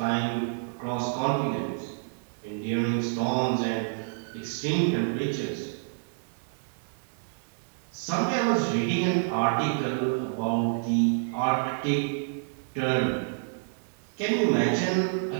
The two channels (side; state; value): left; silent; digital silence